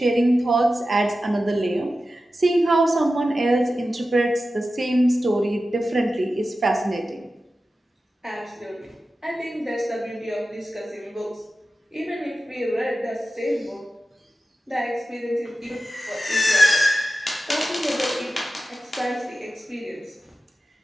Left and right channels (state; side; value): normal; both; correlation 0.93